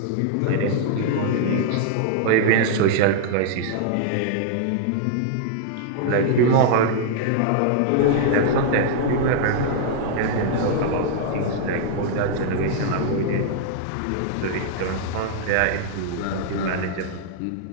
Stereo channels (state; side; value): different; both; correlation -0.01